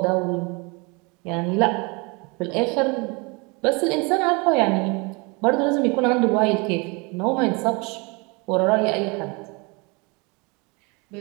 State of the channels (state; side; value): quieter; left; 29.3 dB